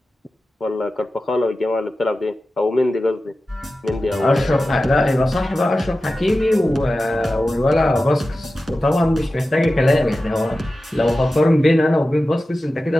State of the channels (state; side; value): normal; both; correlation 0.94